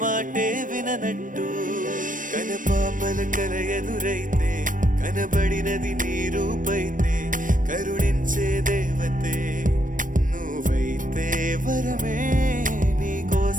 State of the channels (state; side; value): late; left; 0.38 ms